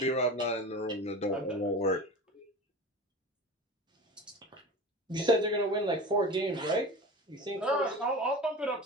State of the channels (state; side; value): normal; both; correlation 0.33